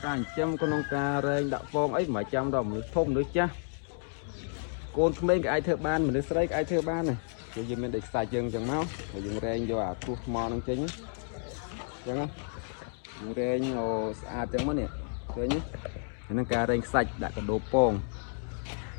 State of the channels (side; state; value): right; silent; 57 dB below the other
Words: ការចិញ្ចឹមក្នុងការរែងដាក់ពងអីមិនចាំដល់មនុស្សធំមនុស្សចាស់កូនក្មេងក៏អាចធ្វើបានមនុស្សស្រីក៏អាចធ្វើបានដែរយើងមានដេកខ្សាច់យើងអញ្ចឹងមកហើយយើងរែងយកអាគ្រោះថ្មនឹងចេញអញ្ចឹងយើងរែងស្អាតអញ្ចឹងមកនេះឃើញហ្នឹងការរែងខ្សាច់ដាក់កដោពង